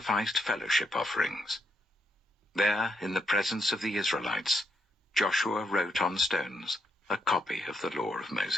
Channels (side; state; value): both; normal; correlation 0.78